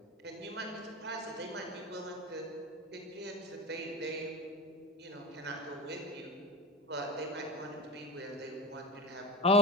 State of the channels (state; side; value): normal; both; correlation 0.28